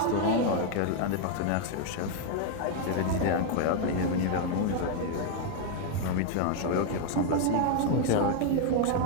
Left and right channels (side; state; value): both; different; correlation 0.01